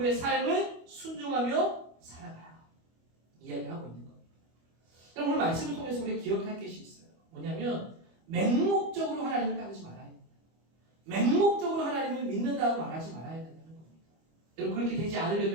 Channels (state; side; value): late; left; 25 ms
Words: 삶을 순종하며 살아가라. 이야기하고 있는 겁니다. 오늘 말씀을 통해서 우리가 기억할 것이 있어요. 뭐냐면 맹목적으로 하나님을 따르지 말아야 됩니다. 맹목적으로 하나님을 믿는다고 말하지 말아야 된다는 겁니다. 여러분 그렇게 되지